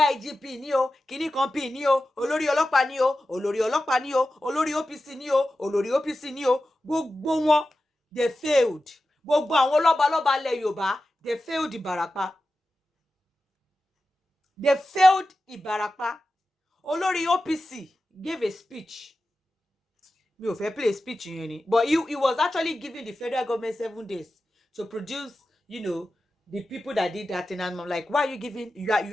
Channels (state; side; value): normal; both; correlation 0.93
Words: ni o, kíní kan P ni o, olórí ọlọ́pàá ni o, olórí ọlọ́pàá ni o, olórí OPC ni o, olórí OPC ni o, gbogbo wọn they failed. Gbogbo àwọn lọ́balọ́ba ilẹ̀ Yorùbá, they failed Ìbàràpá. They failed Ìbàràpá. Olórí OPC gave a speech. Mi ò fẹ́ play speech yẹn ni, but he was actually giving the federal government 7 days to produce, the people that did that, and I'm like, why are you giving? You